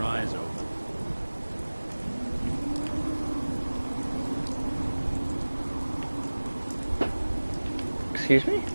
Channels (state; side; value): inverted; both; correlation -1.00